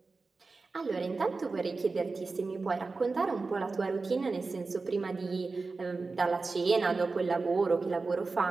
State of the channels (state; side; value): quieter; left; 4.0 dB